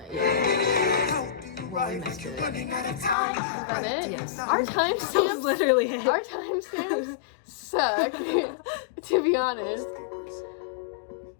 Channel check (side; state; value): right; drops out; at 3.2 s